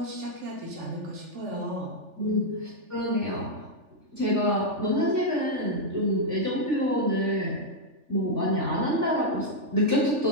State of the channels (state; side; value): late; left; 3.4 ms